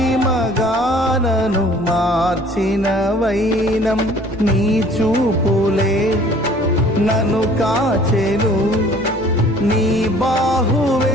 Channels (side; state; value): both; normal; correlation 0.53